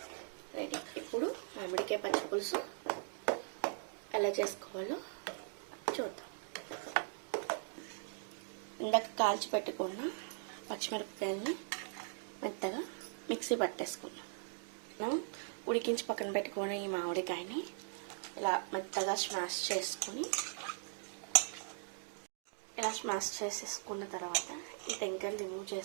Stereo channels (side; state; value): left; silent; digital silence